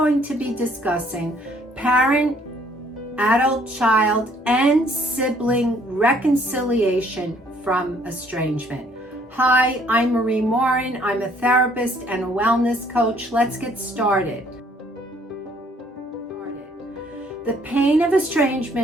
to be discussing parent, adult, child, and sibling reconciliation from estrangement. Hi, I'm Marie Morin. I'm a therapist and a wellness coach. Let's get started. The pain of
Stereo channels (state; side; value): normal; both; correlation 0.62